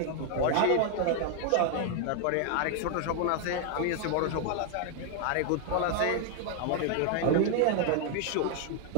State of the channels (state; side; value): different; both; correlation 0.00